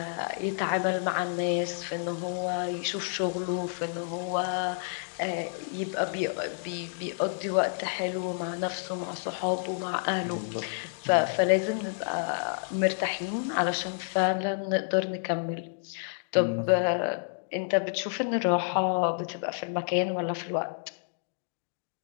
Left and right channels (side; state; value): right; silent; digital silence